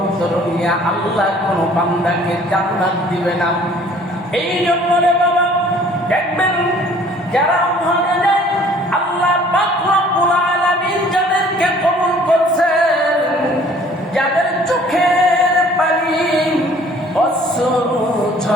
নিয়া আল্লাহ কোন বান্দাকে জান্নাত দিবে না। এই জন্য রে বাবা দেখবেন যারা ওখানে যায়, আল্লাহ পাক রব্বুল আলামিন যাদেরকে কবুল করছেন, যাদের চোখের পানি অশ্রু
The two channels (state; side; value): normal; both; correlation 0.54